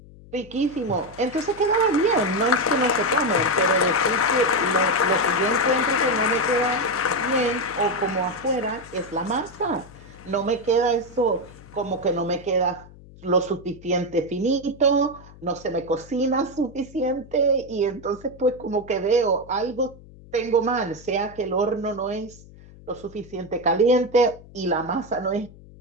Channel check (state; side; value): noise; left; hum, 21 dB below the sound